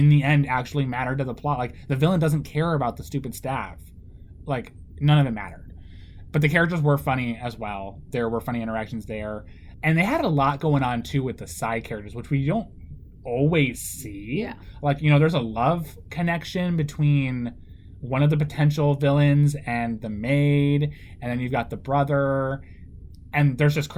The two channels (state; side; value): identical; both; correlation 1.00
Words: the end actually matter to the plot. Like, the villain doesn't care about the stupid staff. Like, none of it mattered. But the characters were funny as well. There were funny interactions there, and they had a lot going on too with the side characters, which we don't always see. Like, you know, there's a love connection between one of the potential villains and the maid, and then you've got the brother, and there's just